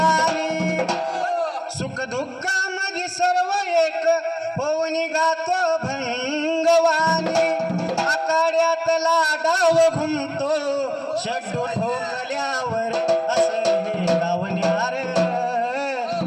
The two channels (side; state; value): both; identical; correlation 1.00